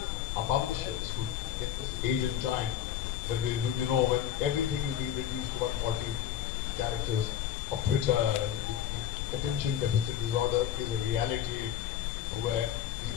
our publishers, who in this age and time, when when everything is being reduced to 140 characters of Twitter, attention deficit disorder is a reality where we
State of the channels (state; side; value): quieter; right; 10.5 dB